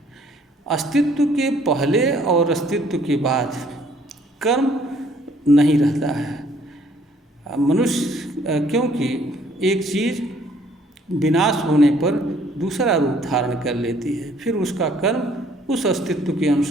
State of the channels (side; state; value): both; normal; correlation 0.61